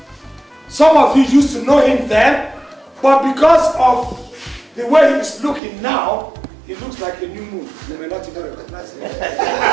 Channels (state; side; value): drops out; left; at 5.6 s